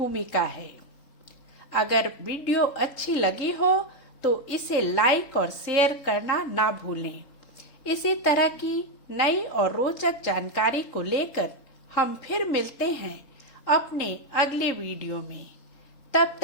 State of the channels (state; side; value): late; right; 3.8 ms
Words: है। अगर वीडियो अच्छी लगी हो तो इसे लाइक और शेयर करना ना भूलें। इसी तरह की नई और रोचक जानकारी को लेकर हम फिर मिलते हैं अपने अगले वीडियो में। तब